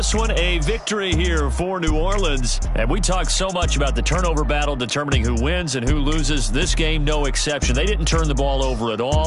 one, a victory here for New Orleans. And we talk so much about the turnover battle determining who wins and who loses. This game, no exception. They didn't turn the ball over at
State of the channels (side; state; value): both; identical; correlation 1.00